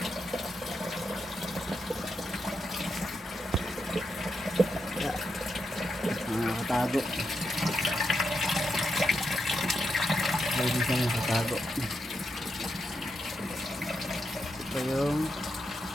Nakatago. Pwede siya nakatago. Ito yung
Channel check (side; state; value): both; normal; correlation 0.84